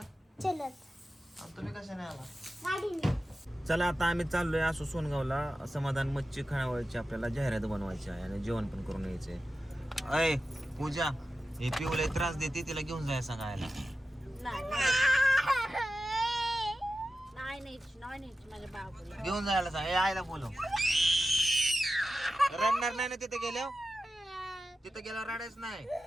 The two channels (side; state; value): both; normal; correlation 0.93